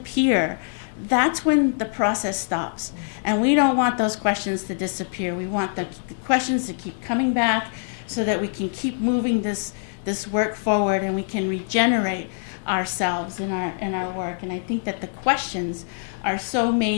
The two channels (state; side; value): silent; right; digital silence